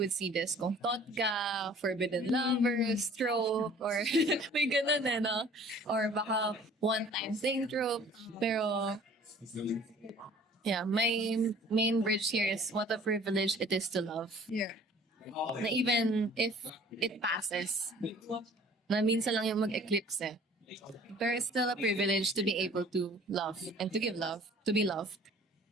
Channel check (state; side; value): normal; both; correlation 0.51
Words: see this. Kung thought ka, forbidden lovers, trope, or may ganun no? Or baka one-time thing trope. Pero, yeah, my main bridge here is what a privilege it is to love. Yeah. Na even if it passes, na minsan lang yung mag-eclipse There is still a privilege to be able to love and to give love, to be loved.